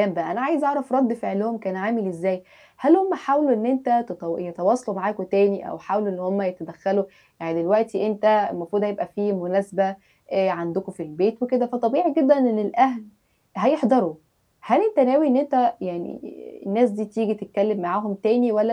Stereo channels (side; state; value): both; identical; correlation 1.00